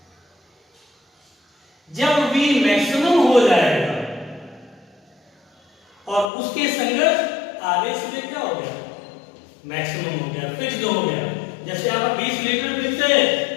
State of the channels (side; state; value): right; drops out; at 6.3 s